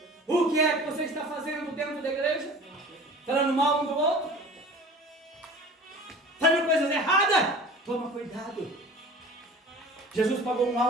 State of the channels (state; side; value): normal; both; correlation 0.42